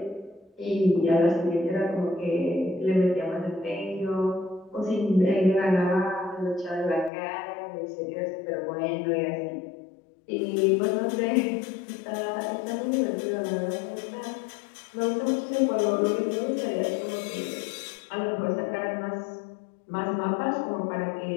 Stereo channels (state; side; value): drops out; right; at 7.1 s